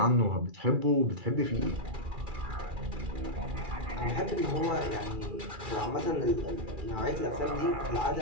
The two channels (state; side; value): late; left; 2.4 ms